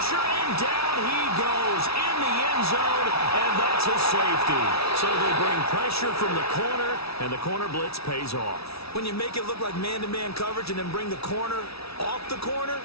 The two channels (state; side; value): late; right; 0.77 ms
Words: and down he goes in the end zone, and that's a safety. So they bring pressure from the corner, and the corner blitz pays off. When you make it look like man-to-man coverage and then bring the corner off the corner,